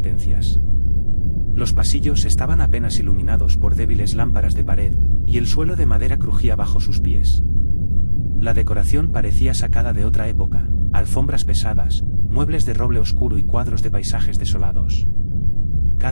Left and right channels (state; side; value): inverted; both; correlation -1.00